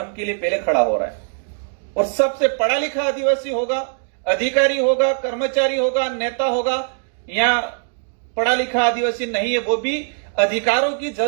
के लिए पहले खड़ा हो रहा है। और सबसे पढ़ा लिखा आदिवासी होगा, अधिकारी होगा, कर्मचारी होगा, नेता होगा, या पढ़ा लिखा आदिवासी नहीं है, वो भी अधिकारों की,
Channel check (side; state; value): left; silent; digital silence